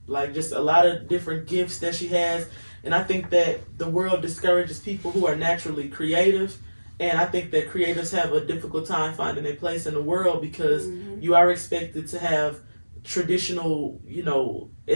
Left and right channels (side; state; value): both; inverted; correlation -1.00